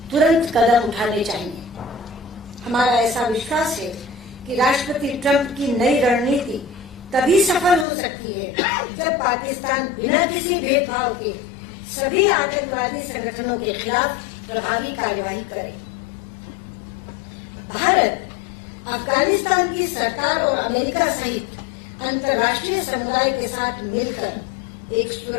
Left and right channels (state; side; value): drops out; right; at 7.9 s